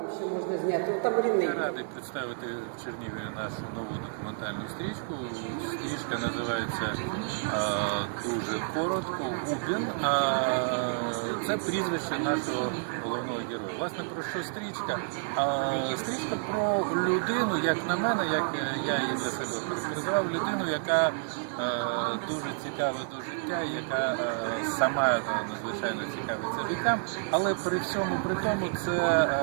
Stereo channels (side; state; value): left; silent; digital silence